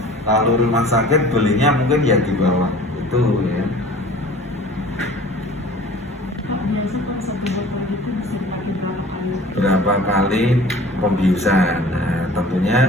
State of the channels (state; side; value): normal; both; correlation 0.45